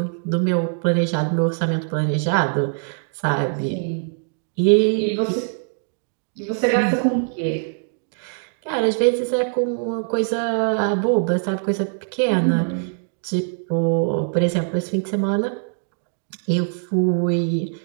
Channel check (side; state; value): left; silent; digital silence